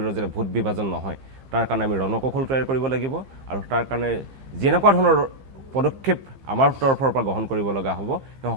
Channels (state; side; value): late; left; 15 ms